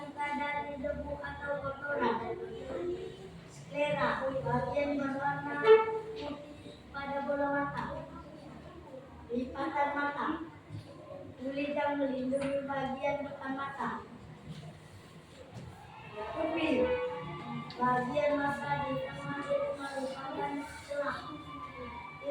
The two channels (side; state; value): both; identical; correlation 1.00